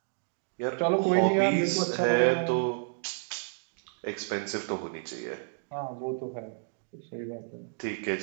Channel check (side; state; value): left; silent; digital silence